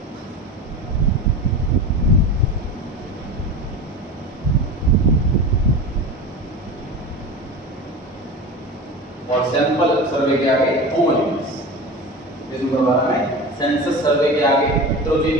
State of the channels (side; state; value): both; normal; correlation 0.30